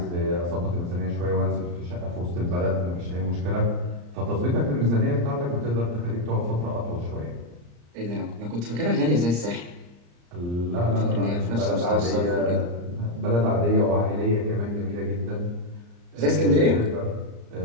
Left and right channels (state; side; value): late; left; 34 ms